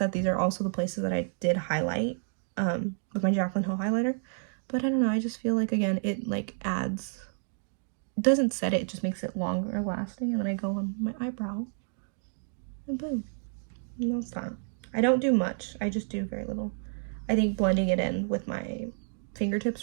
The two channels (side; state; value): left; silent; 58 dB below the other